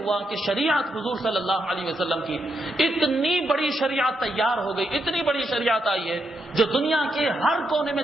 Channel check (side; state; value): both; normal; correlation 0.81